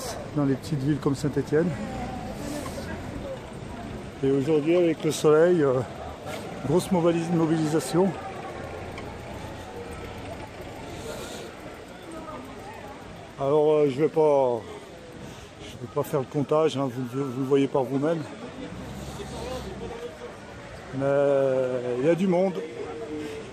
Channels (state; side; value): identical; both; correlation 1.00